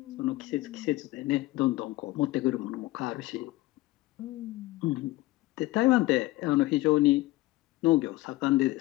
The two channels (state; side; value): quieter; right; 18.6 dB